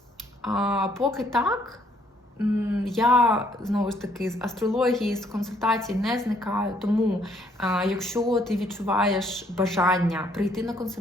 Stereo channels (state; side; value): normal; both; correlation 0.66